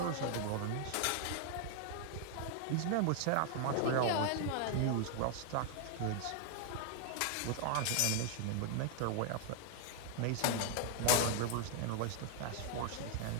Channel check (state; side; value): different; both; correlation 0.00